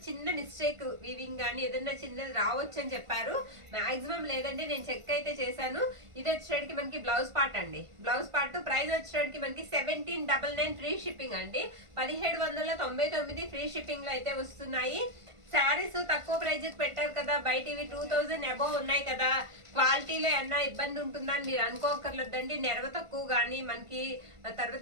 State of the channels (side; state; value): left; late; 1.5 ms